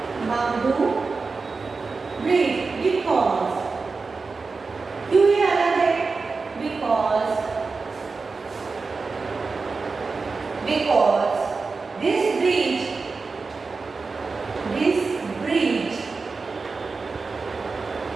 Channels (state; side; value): quieter; left; 4.3 dB